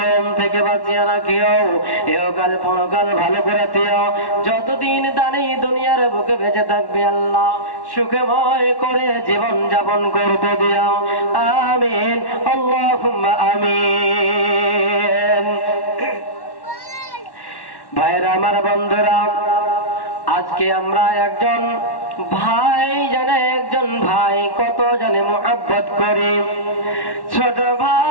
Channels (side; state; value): right; late; 1.1 ms